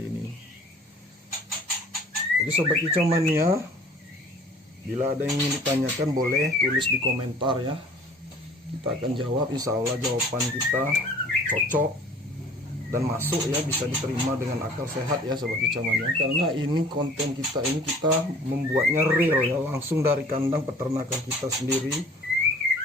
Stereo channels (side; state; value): both; normal; correlation 0.49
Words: ini. Jadi sobat kicauannya, bila ada yang ingin ditanyakan boleh tulis di komentar ya, kita akan jawab. Insya Allah jawaban kita cocok dan masuk ya, bisa diterima dengan akal sehat ya sobat kicauannya. Karena ini konten kita ini, kita membuatnya real ya, langsung dari kandang peternakan kita sendiri.